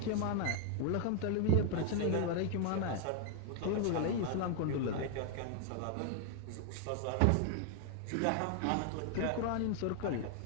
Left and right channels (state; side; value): different; both; correlation 0.00